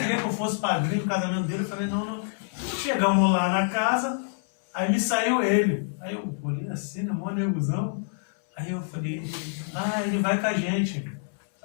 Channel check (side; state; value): right; silent; 60 dB below the other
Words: eu fosse padrinho no casamento dele. Eu falei, não. Chegamos lá na casa, aí me saiu ele. Aí eu olhei assim, na mó negozão. Aí eu falei, ele vai com a gente.